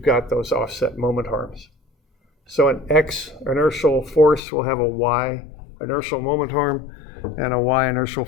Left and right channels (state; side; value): drops out; right; at 4.4 s